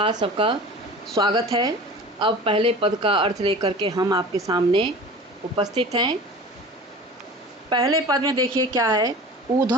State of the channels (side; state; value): both; normal; correlation 0.38